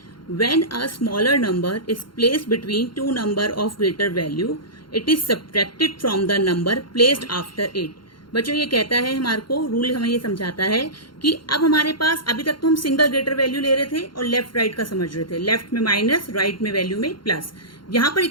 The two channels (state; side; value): late; right; 0.72 ms